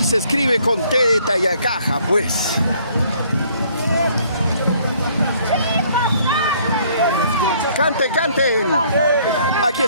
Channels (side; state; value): both; inverted; correlation -0.62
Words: se escribe con T de Tayacaja, pues. Canten, canten. Aquí